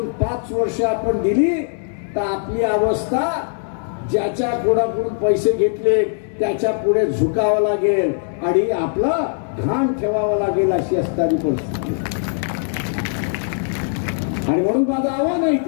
5 वर्ष आपण दिली तर आपली अवस्था ज्याच्या कोणाकडून पैसे घेतले त्याच्या पुढे झुकावं लागेल आणि आपला घाण ठेवावं लागेल अशी असणारी परिस्थिती. आणि म्हणून माझं आव्हान आहे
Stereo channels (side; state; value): right; silent; digital silence